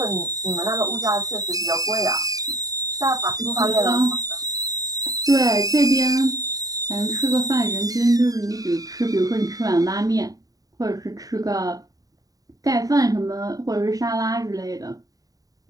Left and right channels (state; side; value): late; left; 0.18 ms